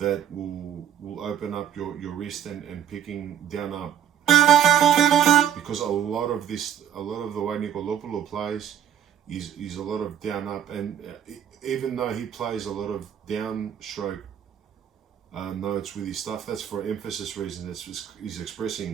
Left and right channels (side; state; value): left; quieter; 9.6 dB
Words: will open up your wrist and picking down up. Because a lot of the way Nikolopoulos plays is a lot of down up, and even though he plays a lot of downstroke notes with his stuff, that's for emphasis reason. That's just, he's